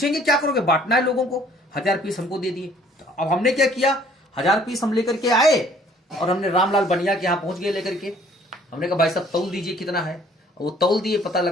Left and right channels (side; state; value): both; normal; correlation 0.57